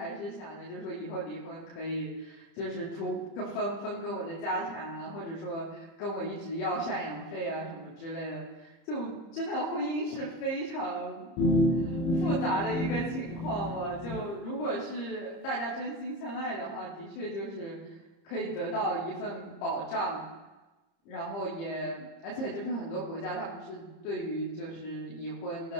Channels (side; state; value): right; late; 30 ms